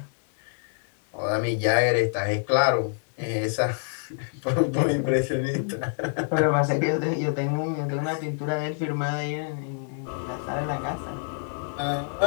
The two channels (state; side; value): silent; right; digital silence